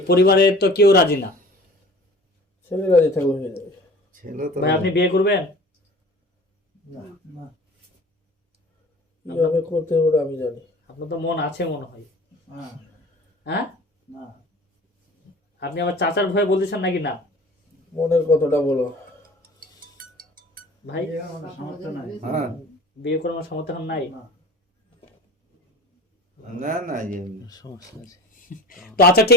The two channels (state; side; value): normal; both; correlation 0.42